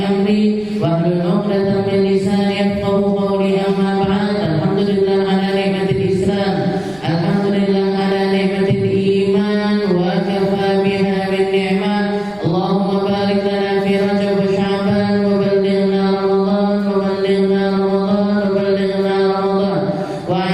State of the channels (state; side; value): noise; right; rumble, 25 dB below the sound